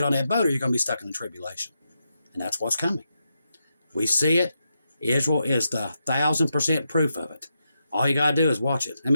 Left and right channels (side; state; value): both; inverted; correlation -0.85